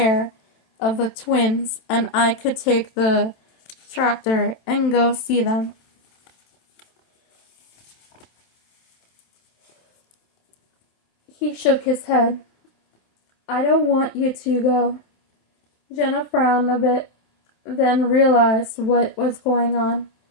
of the twins and I could take the tractor and go see them. He shook his head. I don't want you to go. Jenna frowned a bit, then realized what was going on.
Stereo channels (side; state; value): right; late; 27 ms